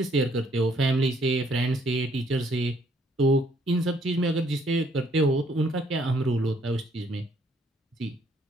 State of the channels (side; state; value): both; normal; correlation 0.66